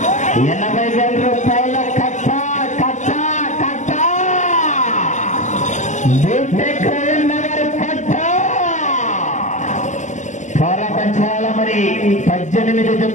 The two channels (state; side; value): late; right; 0.35 ms